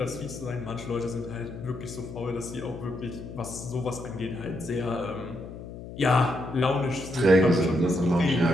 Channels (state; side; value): noise; left; hum, 12 dB below the sound